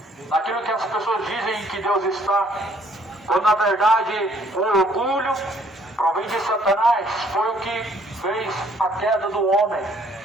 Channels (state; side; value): normal; both; correlation 0.62